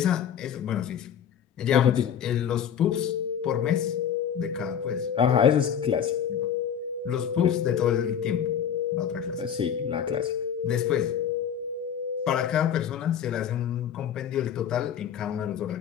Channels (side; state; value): right; quieter; 8.6 dB